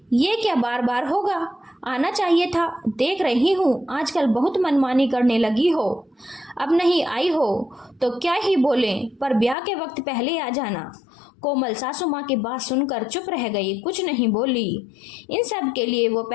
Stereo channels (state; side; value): drops out; right; at 9.6 s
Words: ये क्या बार बार होगा? आना चाहिए था। देख रही हूँ आजकल बहुत मनमानी करने लगी हो। अब नहीं आई हो तो क्या ही बोले, पर ब्याह के वक्त पहले आ जाना। कोमल सासू माँ की बात सुनकर चुप रह गई, कुछ नहीं बोली। इन सब के लिए वो